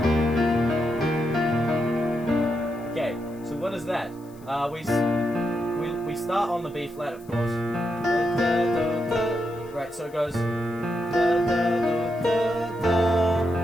Okay, so what is that? We start on the B flat, of course. Right, so it goes.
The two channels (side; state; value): left; noise; hiss, 27 dB below the sound